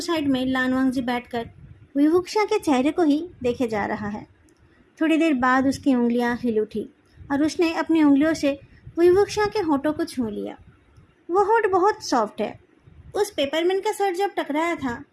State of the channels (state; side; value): identical; both; correlation 1.00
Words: साइड में लानवांगजी बैठकर वुईवुक्शिया के चेहरे को ही देखे जा रहा है। थोड़ी देर बाद उसकी उंगलियां हिल उठी और उसने अपनी उंगलियों से वुईवुक्शिया के होठों को छू लिया। वो होठ बहुत सॉफ्ट है। उस पेपरमैन का सर जब टकराया था